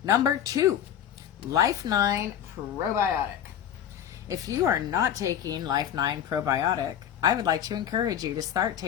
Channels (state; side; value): quieter; right; 9.8 dB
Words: Number 2, Life 9 probiotic. If you are not taking Life 9 probiotic, I would like to encourage you to start